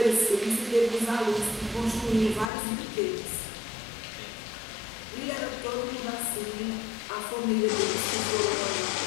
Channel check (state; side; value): drops out; right; at 2.5 s